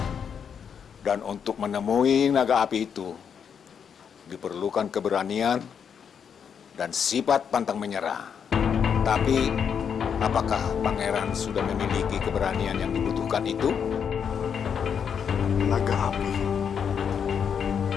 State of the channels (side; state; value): right; quieter; 7.3 dB